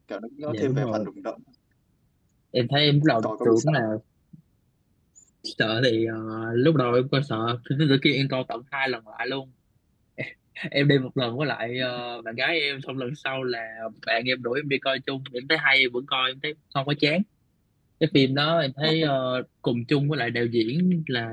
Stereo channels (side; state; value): both; identical; correlation 1.00